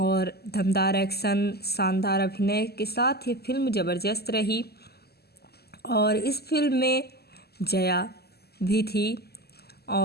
दमदार एक्शन, शानदार अभिनय के साथ ये फिल्म ज़बरदस्त रही। और इस फिल्म में जया भी थी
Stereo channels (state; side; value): late; right; 0.46 ms